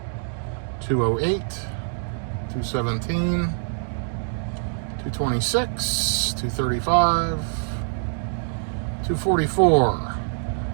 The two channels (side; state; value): left; silent; digital silence